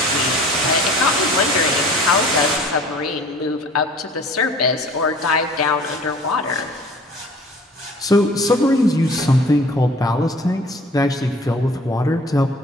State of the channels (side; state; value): both; normal; correlation 0.48